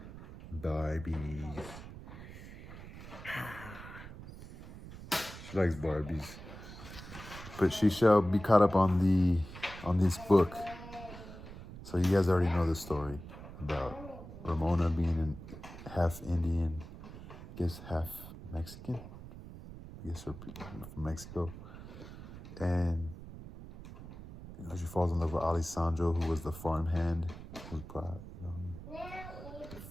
Barbies. She likes Barbies. But she shall be caught up on this book. So you guys already know the story about Ramona being half Indian, I guess half Mexican. I guess her from Mexico. And she falls in love with Alessandro, who was the farmhand. Who's brought,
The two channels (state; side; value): noise; right; rumble, 13 dB below the sound